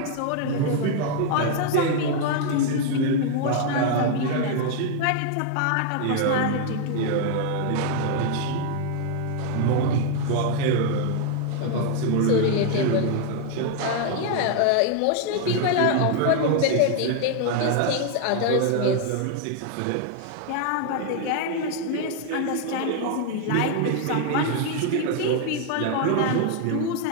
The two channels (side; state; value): both; different; correlation 0.00